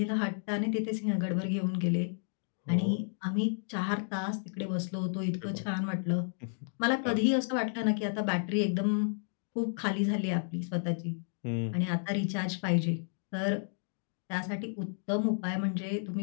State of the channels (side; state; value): right; silent; digital silence